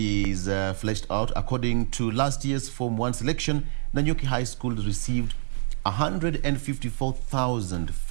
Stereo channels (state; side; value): silent; left; digital silence